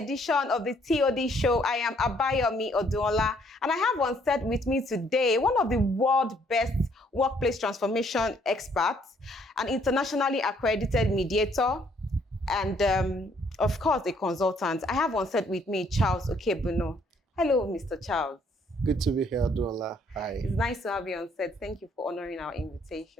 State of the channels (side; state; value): both; normal; correlation 0.66